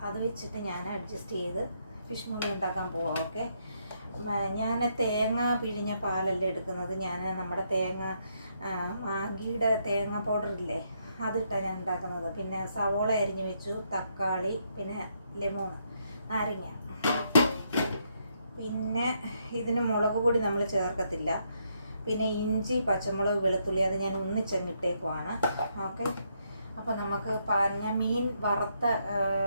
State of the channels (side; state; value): both; inverted; correlation -0.76